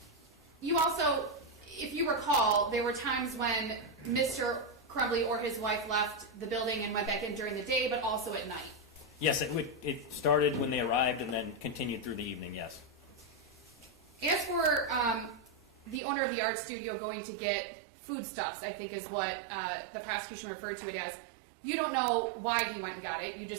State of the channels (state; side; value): drops out; left; at 16.0 s